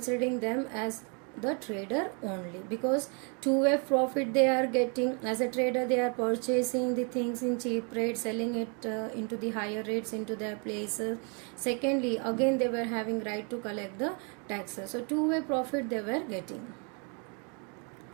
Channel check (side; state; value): left; quieter; 36.4 dB